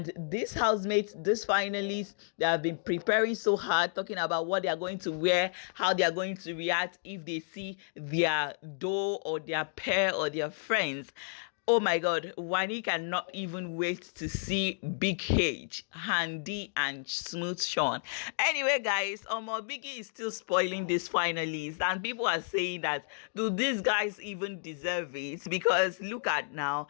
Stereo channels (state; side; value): silent; right; digital silence